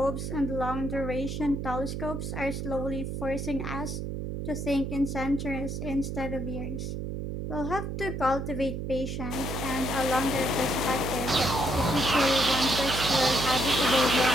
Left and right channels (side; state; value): right; noise; hum, 4 dB below the sound